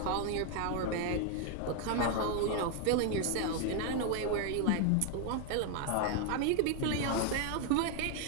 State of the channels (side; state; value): both; different; correlation 0.01